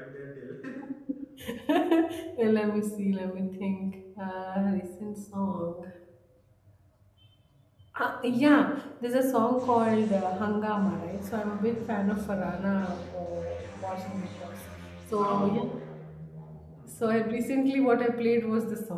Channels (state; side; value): identical; both; correlation 1.00